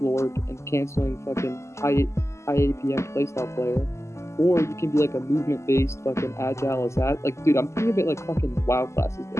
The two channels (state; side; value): late; right; 0.13 ms